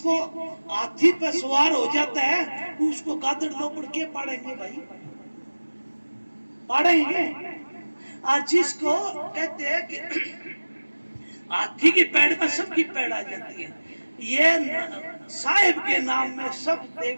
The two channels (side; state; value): both; inverted; correlation -1.00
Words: हाथी पे सवार हो जाता है उसको गादड़ लोपड़ के पाड़ेंगे भाई, पाड़ेंगे। और जिसको कहते हैं कि हाथी की पैड़ में सबकी पैड़ आ जाती है, ये साहिब के नाम में सब